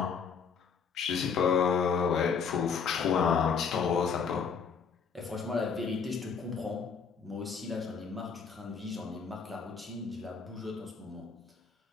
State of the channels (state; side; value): quieter; right; 6.0 dB